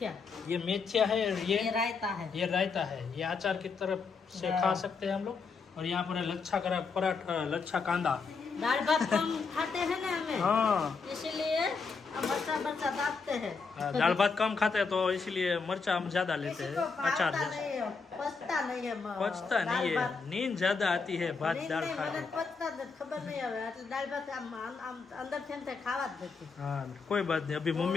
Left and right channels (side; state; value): right; quieter; 4.9 dB